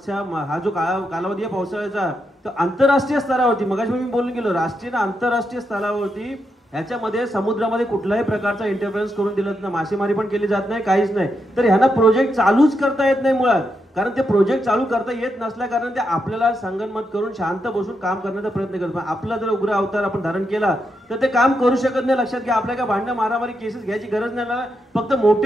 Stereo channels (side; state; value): both; normal; correlation 0.83